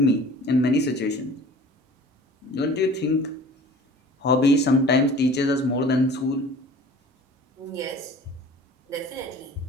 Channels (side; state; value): both; normal; correlation 0.45